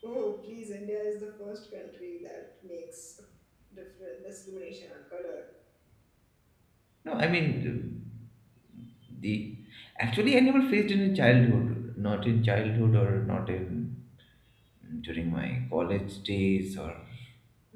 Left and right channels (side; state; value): both; identical; correlation 1.00